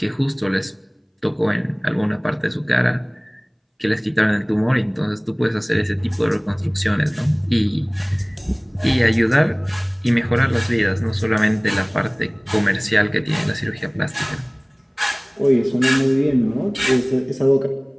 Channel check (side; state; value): both; identical; correlation 1.00